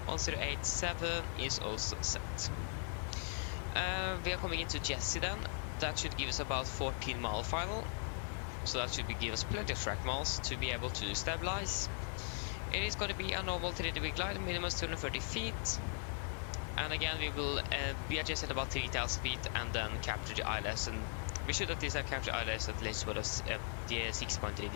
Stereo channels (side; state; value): right; silent; 52 dB below the other